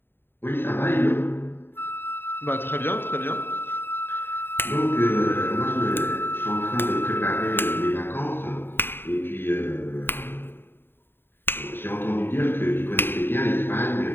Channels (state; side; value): late; right; 0.10 ms